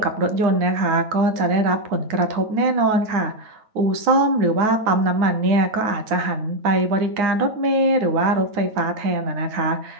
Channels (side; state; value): left; late; 9.3 ms